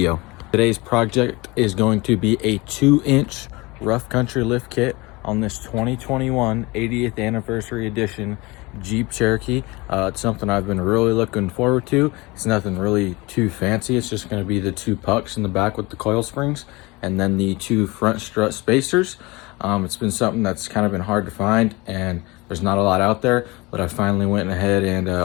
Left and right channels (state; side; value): quieter; right; 23.6 dB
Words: Today's project is going to be a 2-inch rough country lift kit on this 2021 80th anniversary edition Jeep Cherokee. It's something I've been really looking forward to. It's nothing really too fancy. It's just going to be the 2 pucks in the back with the coil springs and then the 2 front strut spacers. It's been something that's kind of been hard to find, and there's not a lot out there, but I finally went ahead and